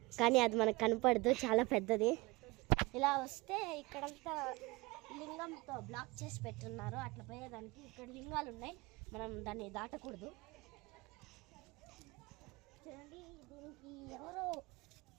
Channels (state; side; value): quieter; left; 23.8 dB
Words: కానీ అది మనకు కనపడదు, చాలా పెద్దది. ఇలా వస్తే ఇక్కడంతా లింగంతో బ్లాక్ చేసి పెట్టున్నారు. అట్లా పోయేదానికి ఇక్కడ లింగాలు ఉన్నాయి, మనం దాన్ని దాటకూడదు. చూడండి, దీనికి ఎవరో